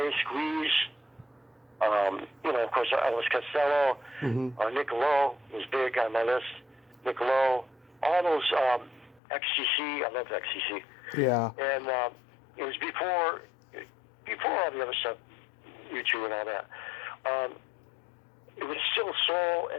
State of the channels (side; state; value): right; drops out; at 9.2 s